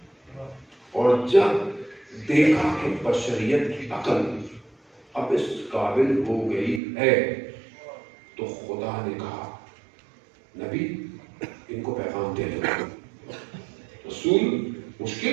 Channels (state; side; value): drops out; left; at 6.8 s